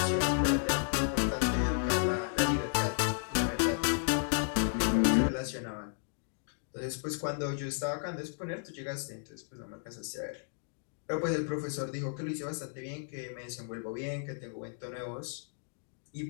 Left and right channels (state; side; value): silent; right; digital silence